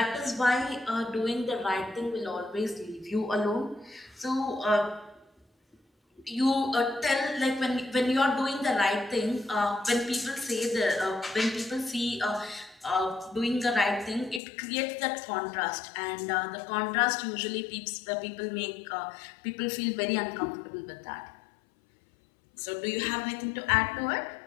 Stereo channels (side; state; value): right; drops out; at 14.4 s